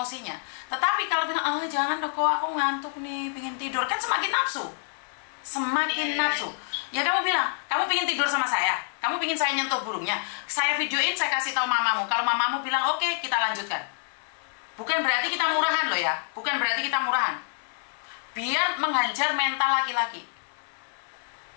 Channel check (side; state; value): right; silent; digital silence